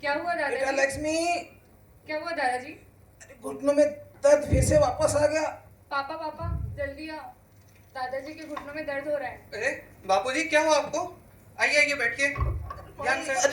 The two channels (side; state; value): both; identical; correlation 1.00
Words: क्या हुआ बेटा दादाजी? लक्ष्मी, क्या हुआ दादाजी? अरे घुटनों में दर्द फिर से वापस आ गया। पापा पापा जल्दी आओ, दादाजी के घुटनों में दर्द हो रहा है। अरे बापूजी, क्या हुआ आपको? आइए आइए, बैठिए। ध्यान से